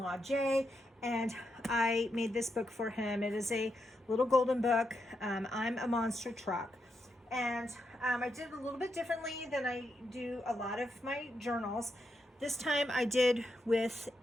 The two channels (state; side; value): normal; both; correlation 0.83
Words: Jay, and I made this book for him. It is a little golden book. I'm a monster truck. And I did it a little bit differently than I do a lot of my journals. This time I did with